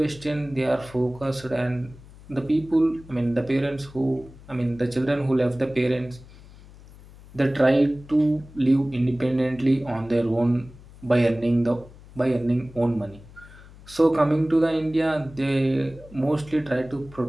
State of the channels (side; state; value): left; noise; hum, 21 dB below the sound